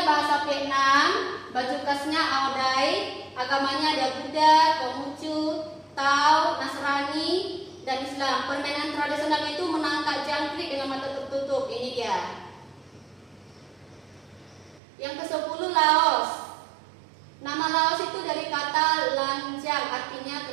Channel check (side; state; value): left; drops out; at 14.8 s